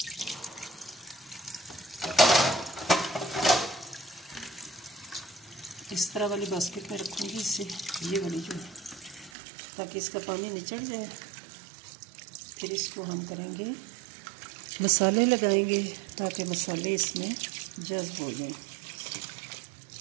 इस तरह वाली बास्केट में रखूँगी इसे, ये वाली जो है, ताकि इसका पानी निचड़ जाए। फिर इसको हम करेंगे मसाले लगाएंगे ताकि मसाले इसमें जज़्ब हो जाएं।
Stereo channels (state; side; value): drops out; left; at 9.3 s